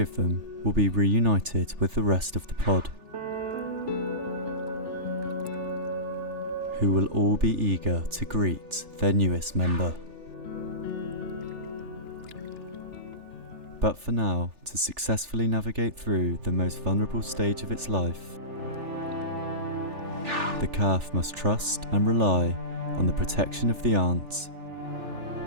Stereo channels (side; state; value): left; late; 3.4 ms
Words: them will be reunited with the rest of the pod, who will all be eager to greet their newest member. But for now, to successfully navigate through the most vulnerable stage of its life, the calf must trust and rely on the protection of the aunt